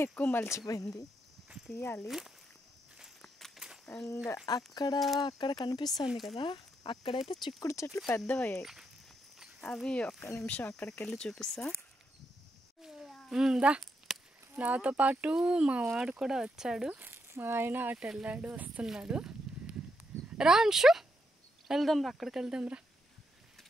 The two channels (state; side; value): normal; both; correlation 0.80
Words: ఎక్కువ మలిచిపోయింది, తీయాలి. అండ్ అక్కడ కనిపిస్తుంది కదా, అక్కడైతే చిక్కుడు చెట్లు పెద్దవయ్యాయి. అవి ఒక్క నిమిషం అక్కడికి వెళ్ళి చూపిస్తా. దా, నాతో పాటు మా వాడు కూడా వచ్చాడు. మా ఆయన అటు వెళ్ళాడు, వస్తున్నాడు. రా అంశు, వెళ్దాం రా, అక్కడికి వెళ్దాం రా.